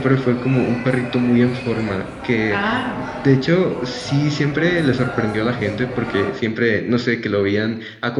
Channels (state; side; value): identical; both; correlation 1.00